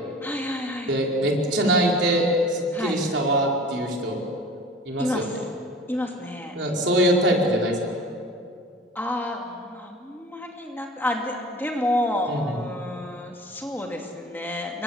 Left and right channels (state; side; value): normal; both; correlation 0.41